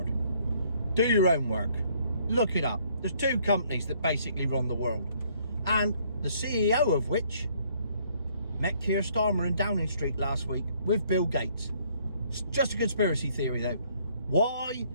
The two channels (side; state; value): both; inverted; correlation -0.64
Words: Do your own work. Look it up. There's two companies that basically run the world. And the CEO of which met Keir Starmer in Downing Street last week with Bill Gates. It's just a conspiracy theory though. Why